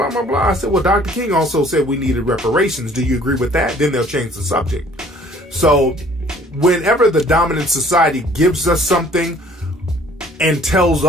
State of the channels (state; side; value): normal; both; correlation 0.55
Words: blah, blah. I said, well, Dr. King also said we needed reparations. Do you agree with that? Then they'll change the subject. So whenever the dominant society gives us something and tells